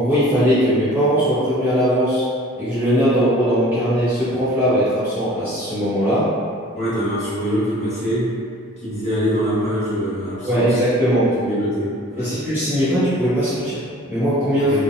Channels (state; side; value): normal; both; correlation 0.48